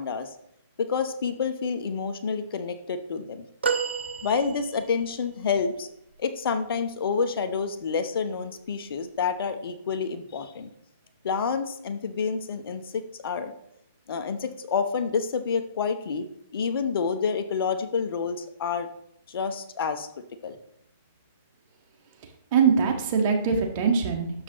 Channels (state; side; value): inverted; both; correlation -0.50